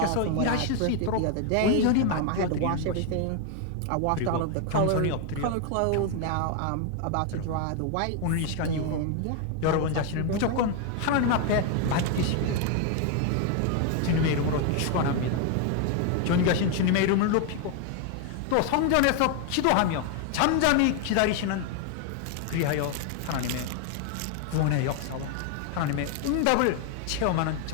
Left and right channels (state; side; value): different; both; correlation 0.01